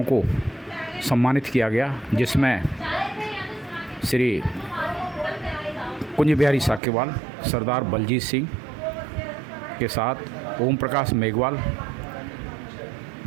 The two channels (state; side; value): drops out; left; at 6.8 s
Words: को सम्मानित किया गया, जिसमें श्री कुंज बिहारी साकेवाल, सरदार बलजीत सिंह के साथ ओम प्रकाश मेघवाल,